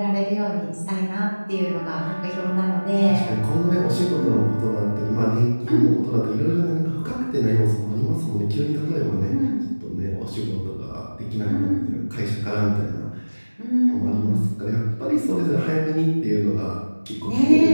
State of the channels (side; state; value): both; inverted; correlation -1.00